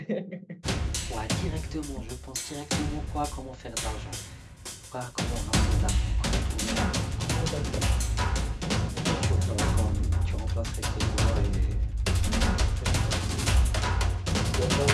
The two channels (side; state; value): both; identical; correlation 1.00